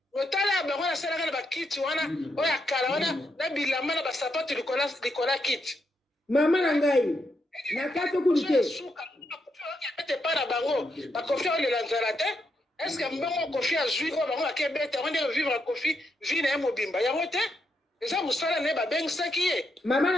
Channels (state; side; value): normal; both; correlation 0.81